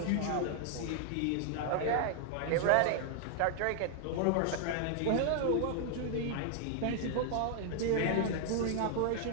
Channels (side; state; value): both; different; correlation 0.00